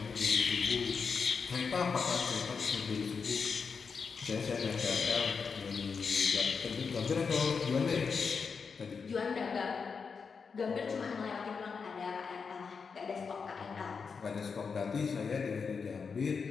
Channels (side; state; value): right; quieter; 5.5 dB